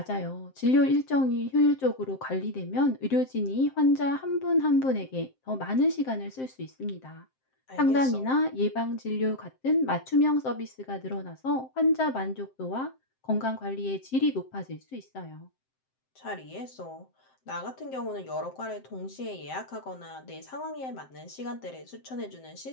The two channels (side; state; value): right; late; 7.7 ms